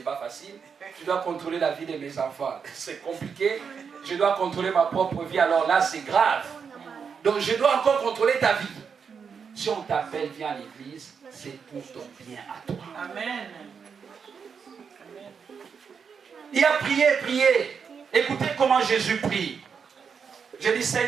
facile. Je dois contrôler la vie de mes enfants, c'est compliqué. Je dois contrôler ma propre vie, alors là, c'est grave. Donc, je dois encore contrôler ta vie. Si on t'appelle, viens à l'église, c'est pour ton bien à toi. Amen. Il a prié, prié. Écoutez comment Jésus prie. Je dis,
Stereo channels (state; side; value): quieter; left; 6.3 dB